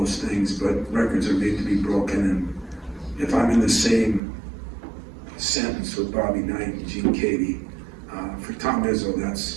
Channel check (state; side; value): drops out; left; at 4.2 s